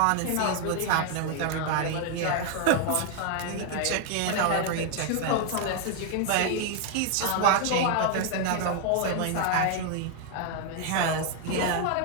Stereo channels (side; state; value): both; different; correlation 0.00